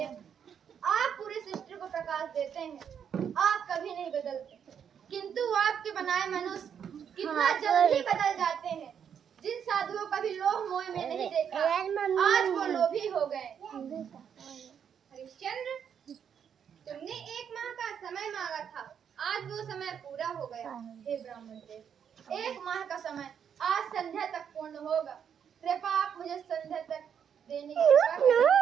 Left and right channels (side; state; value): left; quieter; 8.0 dB